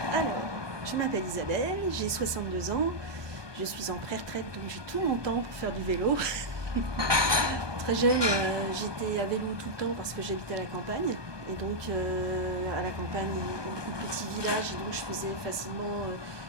Alors, je m'appelle Isabelle, j'ai 62 ans, je suis en pré-retraite, donc j'ai tout mon temps pour faire du vélo. Très jeune, j'étais à vélo tout le temps parce que j'habitais à la campagne. Et donc, à la campagne, un petit village, et donc je faisais facilement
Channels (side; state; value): left; late; 1.2 ms